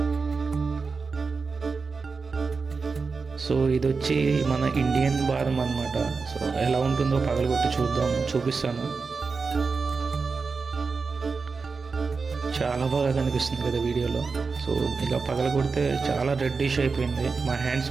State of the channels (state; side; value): quieter; left; 4.7 dB